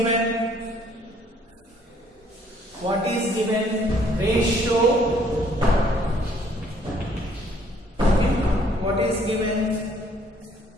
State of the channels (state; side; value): normal; both; correlation 0.62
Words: What is given? Ratio. Okay, what is given?